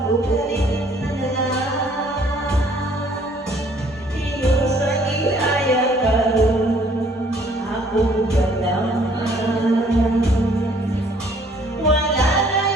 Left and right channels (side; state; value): both; normal; correlation 0.60